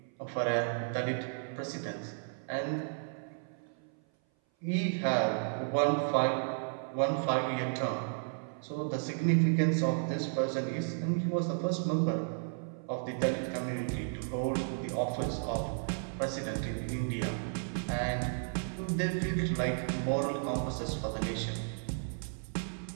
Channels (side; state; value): left; silent; 55 dB below the other